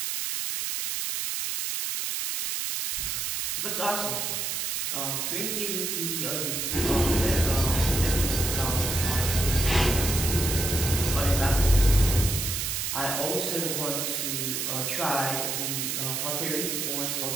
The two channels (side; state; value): right; noise; hiss, 1 dB below the sound